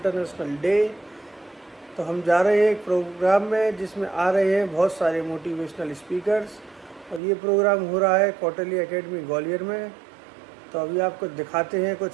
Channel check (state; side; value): drops out; left; at 7.2 s